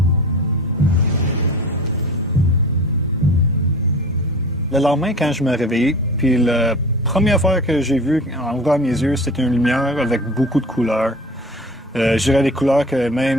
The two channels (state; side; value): normal; both; correlation 0.38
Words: Le lendemain, quand je me réveillais, puis la première fois que j'ai vu en ouvrant mes yeux, c'était une lumière avec beaucoup de couleurs. Je dirais des couleurs que